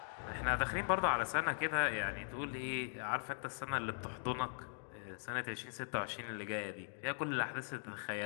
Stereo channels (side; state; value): right; silent; digital silence